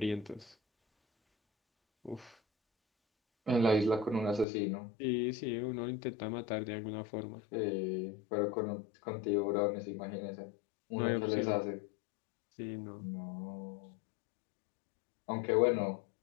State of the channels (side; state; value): right; drops out; at 4.5 s